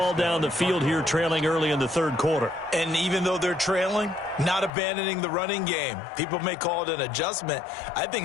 down the field here, trailing early in the third quarter. And even though they're trailing, not abandoning the running game. People may call it an adjustment. I think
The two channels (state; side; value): drops out; right; at 4.7 s